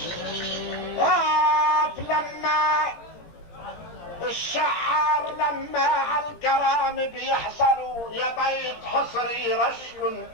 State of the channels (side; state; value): right; late; 17 ms